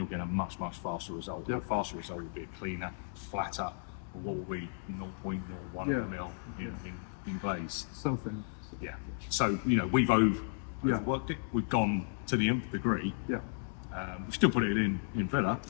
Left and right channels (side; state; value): right; silent; digital silence